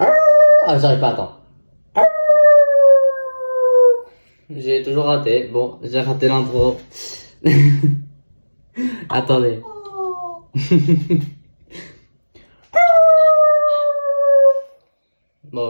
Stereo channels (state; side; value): inverted; both; correlation -1.00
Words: j'arrive pas, attends. J'ai toujours raté. Bon, j'ai raté l'intro. Attendez.